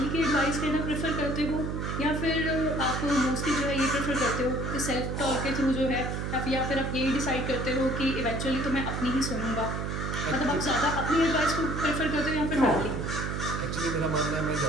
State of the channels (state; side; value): noise; right; hum, 3 dB below the sound